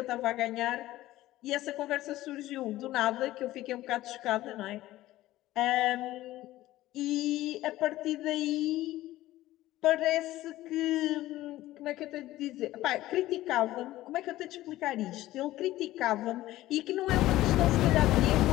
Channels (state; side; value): quieter; right; 15.8 dB